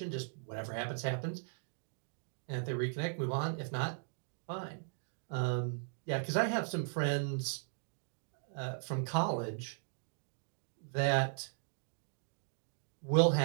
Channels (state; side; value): silent; left; digital silence